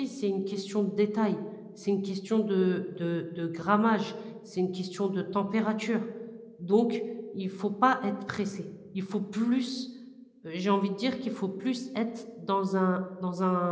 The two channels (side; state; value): both; identical; correlation 1.00